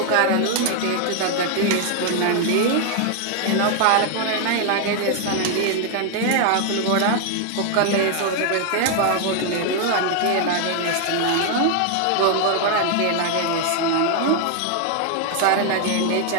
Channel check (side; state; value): both; different; correlation 0.00